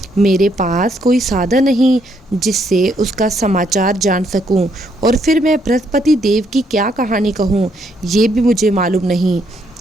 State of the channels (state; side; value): normal; both; correlation 0.73